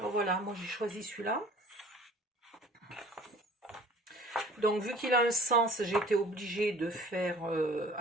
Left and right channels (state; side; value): normal; both; correlation 0.48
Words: voilà, moi j'ai choisi celui-là. Donc vu qu'il a un sens, j'ai été obligée de faire